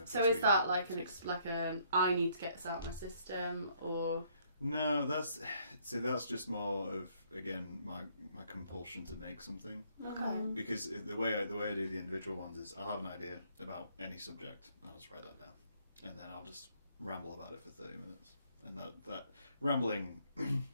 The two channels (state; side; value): inverted; both; correlation -0.66